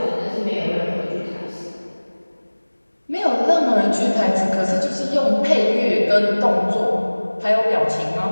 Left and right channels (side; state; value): both; inverted; correlation -1.00